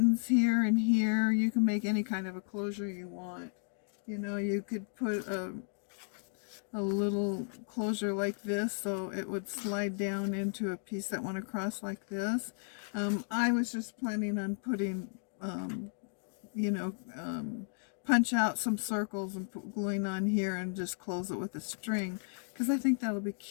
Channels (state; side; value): silent; right; 55 dB below the other